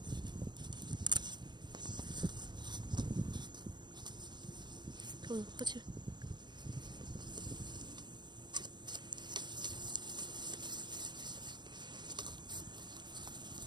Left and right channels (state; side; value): late; left; 0.22 ms